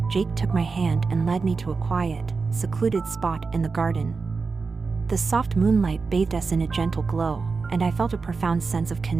Jake took my hand and led me to a quiet, secluded spot in the garden. The soft moonlight bathed us in a gentle glow, and I felt a profound sense of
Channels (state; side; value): quieter; left; 4.5 dB